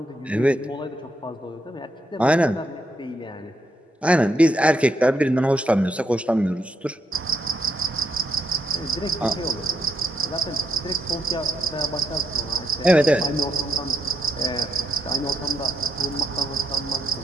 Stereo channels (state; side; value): normal; both; correlation 0.79